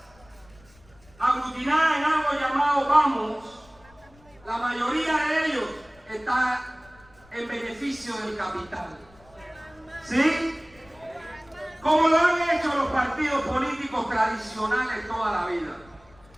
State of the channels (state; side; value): noise; left; rumble, 27 dB below the sound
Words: aglutinadas en algo llamado Vamos, la mayoría de ellos está en beneficio del capital. ¿Sí? Como lo han hecho los partidos políticos tradicionales toda la vida.